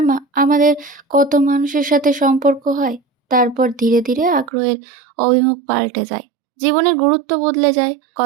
আমাদের কত মানুষের সাথে সম্পর্ক হয়, তারপর ধীরে ধীরে আগ্রহের অভিমুখ পাল্টে যায়, জীবনের গুরুত্ব বদলে যায়,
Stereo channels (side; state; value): left; drops out; at 4.5 s